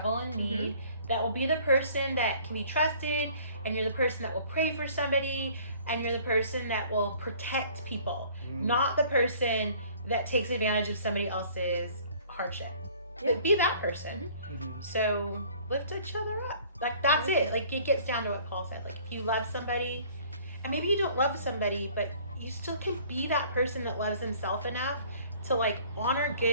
and need. That will be the person that can be trusted, and you're the person that will pray for somebody, and you're the person that will protect people, not the person that takes advantage of somebody else's hardship. But be that person. So lift each other up. Like that's it. Like it gets down to what Paul said. Like if you love somebody, and maybe you don't love somebody, but you still can be that person that loves himself enough to like honor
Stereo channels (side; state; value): both; inverted; correlation -0.54